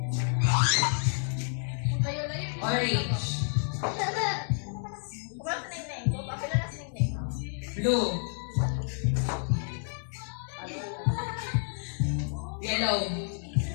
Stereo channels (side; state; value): right; silent; 58 dB below the other